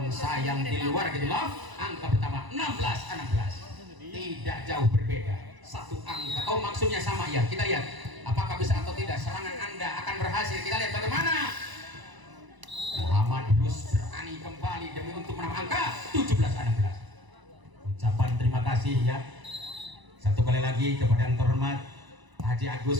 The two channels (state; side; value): late; left; 1.0 ms